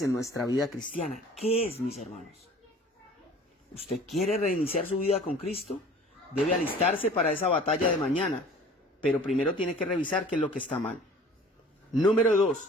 nuestra vida cristiana. ¿Qué es, mis hermanos? ¿Usted quiere reiniciar su vida con Cristo? Debe alistarse para esa batalla de mañana, pero primero tiene que revisar qué es lo que está mal. Número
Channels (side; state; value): both; normal; correlation 0.47